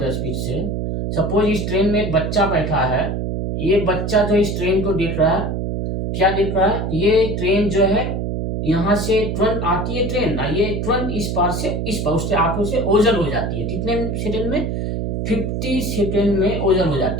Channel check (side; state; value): right; noise; hum, 2 dB below the sound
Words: स्पीड से। सपोज इस ट्रेन में एक बच्चा बैठा है, ये बच्चा जो इस ट्रेन को देख रहा है, क्या देख रहा है, ये ट्रेन जो है यहाँ से तुरंत आती है ट्रेन, ये तुरंत इस पार से इस पार उसके आंखों से ओझल हो जाती है। कितने सेकंड में, 50 सेकंड में ओझल हो